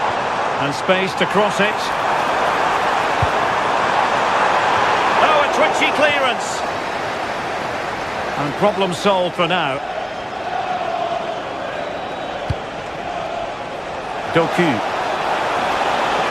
And space to cross it. Oh, a twitchy clearance. And problem solved for now. Doku.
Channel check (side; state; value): both; identical; correlation 1.00